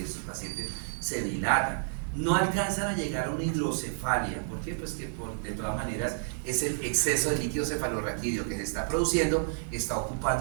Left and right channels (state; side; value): silent; left; digital silence